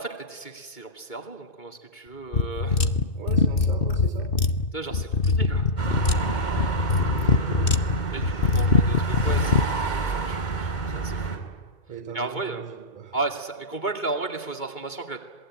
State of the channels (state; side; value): late; right; 2.6 ms